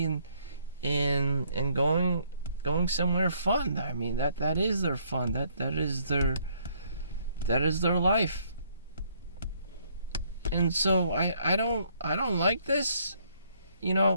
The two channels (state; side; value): inverted; both; correlation -0.67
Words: and going somewhere fun. I mean, that is their fun. That is their life. And so I don't like this,